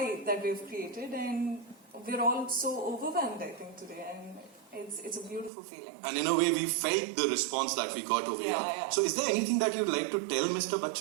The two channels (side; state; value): left; drops out; at 5.5 s